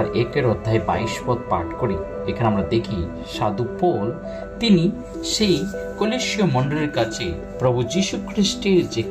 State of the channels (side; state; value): both; identical; correlation 1.00